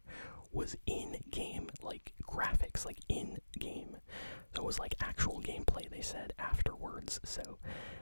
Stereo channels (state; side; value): inverted; both; correlation -1.00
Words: was in-game, graphics, in-game. So it was actual gameplay, they said, afterwards. So